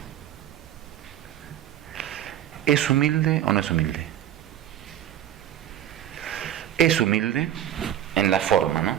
¿Es humilde o no es humilde? Es humilde en la forma, ¿no?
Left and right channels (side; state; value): left; quieter; 11.0 dB